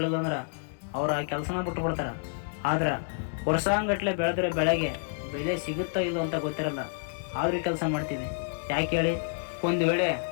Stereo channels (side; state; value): right; silent; digital silence